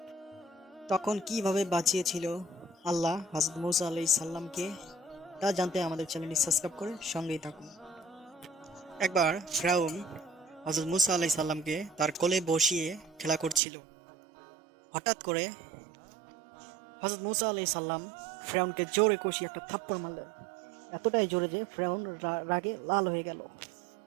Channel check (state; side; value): drops out; left; at 13.6 s